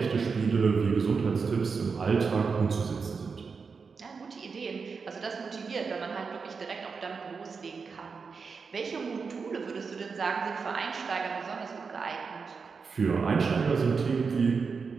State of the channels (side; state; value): left; quieter; 5.2 dB